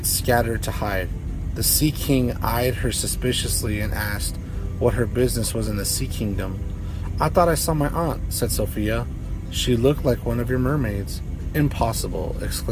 scattered to hide. The Sea King eyed her suspiciously and asked what her business was in the Sea Kingdom. I thought I saw my aunt, said Sophia. She looked like one of your mermaids. Impossible,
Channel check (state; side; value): identical; both; correlation 1.00